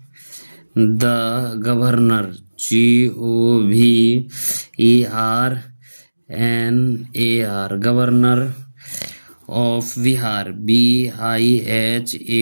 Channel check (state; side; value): inverted; both; correlation -1.00